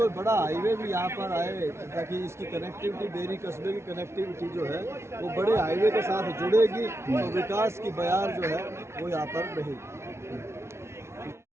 बड़ा हाईवे भी यहाँ पर आए ताकि इसकी कनेक्टिविटी, बेरी कस्बे की कनेक्टिविटी जो है वो बड़े हाईवे के साथ जुड़ेगी तो विकास की बयार जो है वो यहाँ पर रहेगी।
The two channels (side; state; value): left; late; 0.13 ms